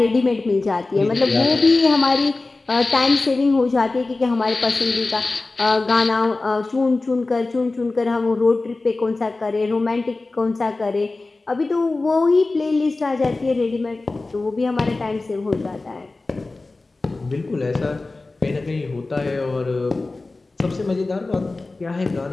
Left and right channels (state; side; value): quieter; right; 3.4 dB